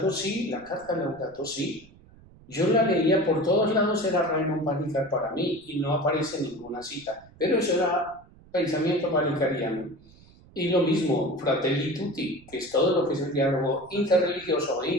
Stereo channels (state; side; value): noise; right; rumble, 25 dB below the sound